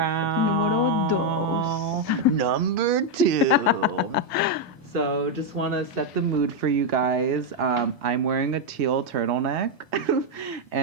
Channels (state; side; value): normal; both; correlation 0.01